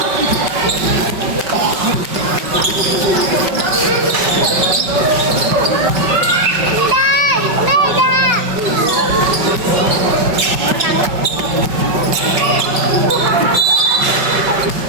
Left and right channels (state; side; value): late; left; 5.3 ms